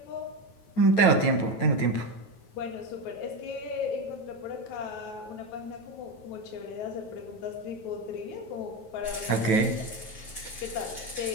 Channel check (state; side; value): late; right; 9.2 ms